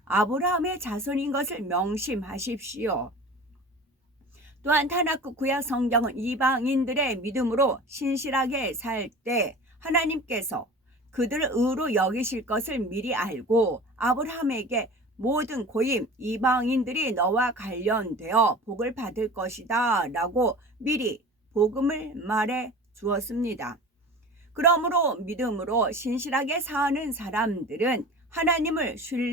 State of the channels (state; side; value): normal; both; correlation 0.38